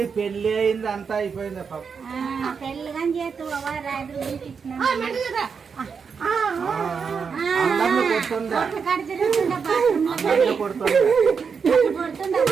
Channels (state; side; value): quieter; left; 6.0 dB